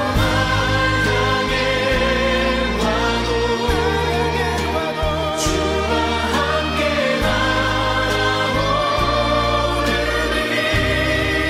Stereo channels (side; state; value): both; identical; correlation 1.00